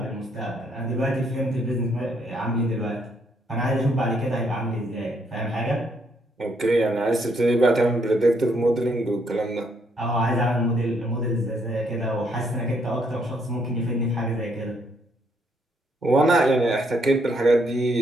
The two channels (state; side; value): normal; both; correlation 0.72